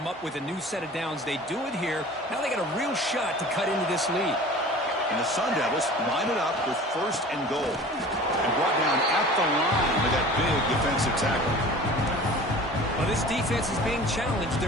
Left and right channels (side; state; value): both; normal; correlation 0.41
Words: up with a new set of downs. They do it here. Now they got a real shot to cut into this lead. And the Sun Devils line it up with first and goal. And brought down at the line with that big defensive tackle. Well, this defense is being challenged.